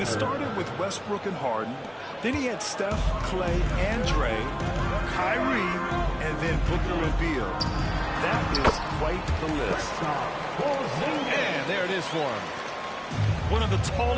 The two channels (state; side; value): identical; both; correlation 1.00